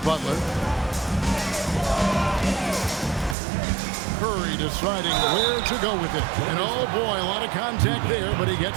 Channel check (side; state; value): left; drops out; at 3.4 s